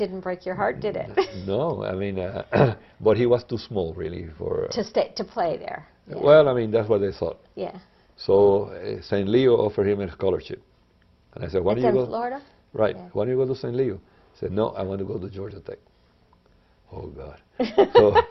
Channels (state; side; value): identical; both; correlation 1.00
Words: break your heart, did it? No, I mean, but he was too small really for... to play there. Yeah. Well, I mean, that's what they thought. Yeah. So St. Leo offered him a scholarship. And I said, why It's don't you in go? Florida? Right. Yeah. Why don't you go to St. Leo? He said, no, I want to go to Georgia Tech. Oh, God.